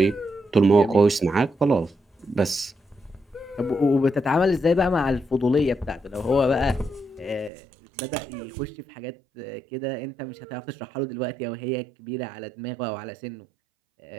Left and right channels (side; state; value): left; drops out; at 7.5 s